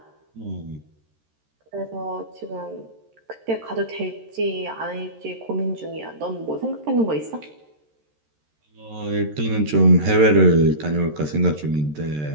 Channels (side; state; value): left; late; 13 ms